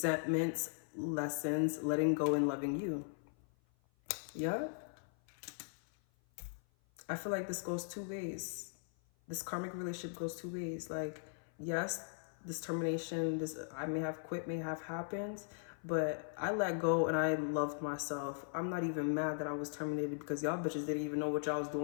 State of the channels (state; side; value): silent; right; 52 dB below the other